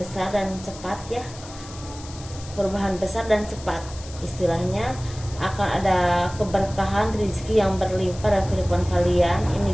dan cepat ya, perubahan besar dan cepat. Istilahnya akan ada keberkahan rezeki yang berlimpah dalam kehidupan kalian.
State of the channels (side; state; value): left; noise; hiss, 17 dB below the sound